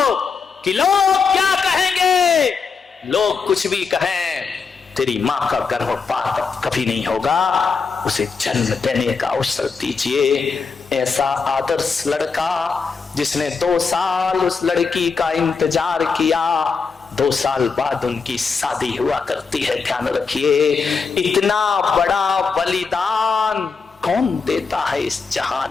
कि लोग क्या कहेंगे। लोग कुछ भी कहें, तेरी मां का गर्भपात कभी नहीं होगा। उसे जन्म देने का अवसर दीजिए। ऐसा आदर्श लड़का जिसने 2 साल उस लड़की का इंतजार किया, 2 साल बाद उनकी शादी हुआ करती है। ध्यान रखिए, इतना बड़ा बलिदान कौन देता है इस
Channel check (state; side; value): quieter; right; 5.2 dB